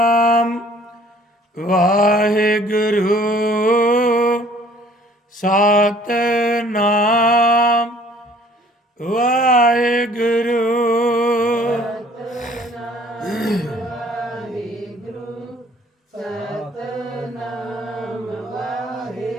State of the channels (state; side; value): normal; both; correlation 0.56